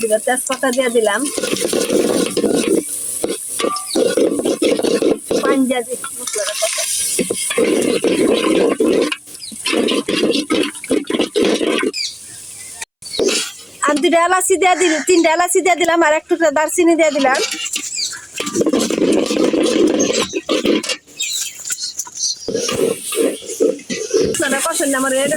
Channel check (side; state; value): both; identical; correlation 1.00